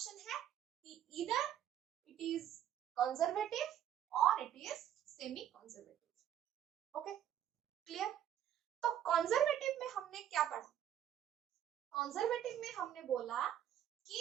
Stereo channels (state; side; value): quieter; left; 10.7 dB